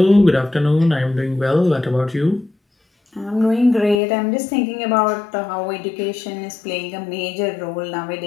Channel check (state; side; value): drops out; right; at 4.0 s